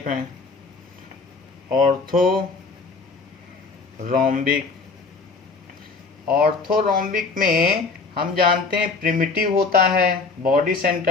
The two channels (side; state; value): right; quieter; 4.2 dB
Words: हैं? ऑर्थोरोम्बिक में हम जानते हैं प्रिमिटिव होता है, body